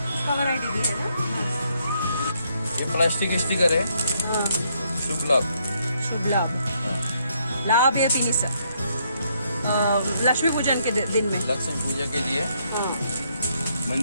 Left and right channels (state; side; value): inverted; both; correlation -0.73